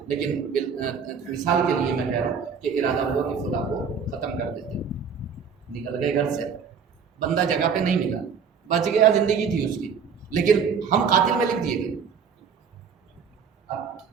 لیکن مثال کے لیے میں کہہ رہا ہوں کہ ارادہ ہوا کہ خدا کو ختم کر دیتے، نکل گئے گھر سے، بندہ جگہ پہ نہیں ملا، بچ گیا، زندگی تھی اس کی، لیکن ہم قاتل میں لکھ دیے گئے.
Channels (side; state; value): left; quieter; 6.4 dB